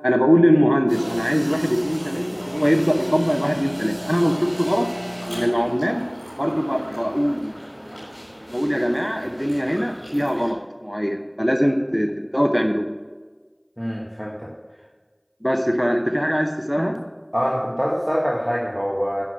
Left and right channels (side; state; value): both; identical; correlation 1.00